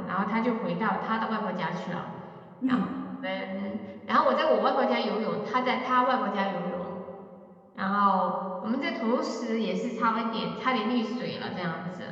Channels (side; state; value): both; identical; correlation 1.00